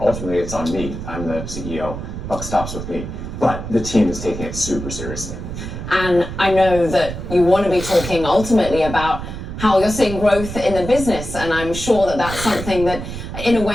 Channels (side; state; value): right; noise; rumble, 8 dB below the sound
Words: it's on me. I'm the CEO. Buck stops with me. But the team is taking it super seriously. And I know that you want to be talking ultimately about how you're seeing growth in the business. And I'm sure that that's something that, in a